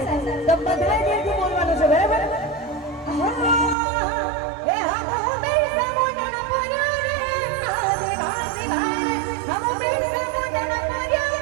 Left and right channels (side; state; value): left; drops out; at 3.8 s